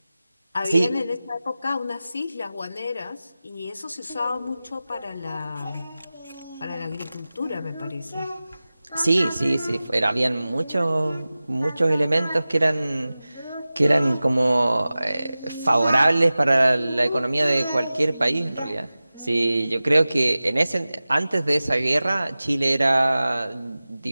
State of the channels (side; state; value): both; inverted; correlation -0.96